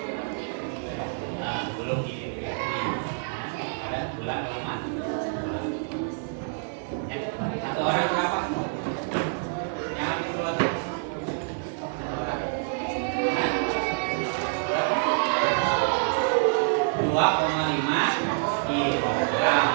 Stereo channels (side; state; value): left; silent; digital silence